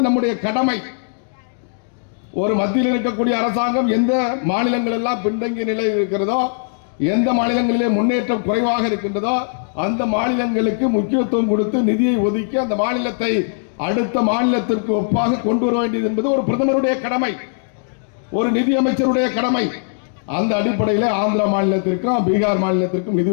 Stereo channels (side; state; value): right; silent; digital silence